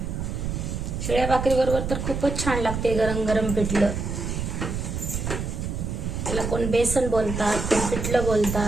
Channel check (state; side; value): noise; right; rumble, 3 dB below the sound